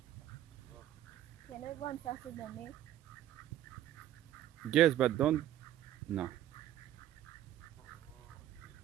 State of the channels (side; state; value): left; quieter; 12.4 dB